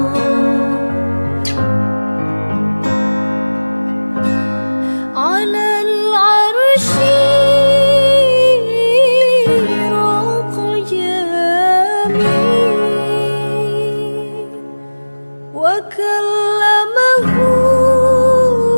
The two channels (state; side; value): inverted; both; correlation -1.00